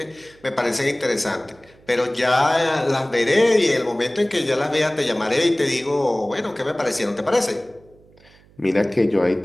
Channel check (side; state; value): right; noise; hum, 28 dB below the sound